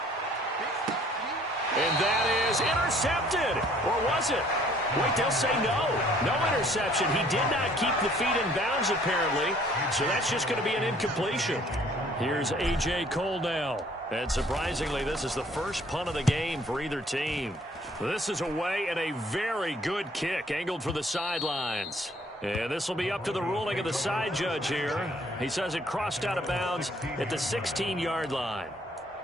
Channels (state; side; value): normal; both; correlation 0.59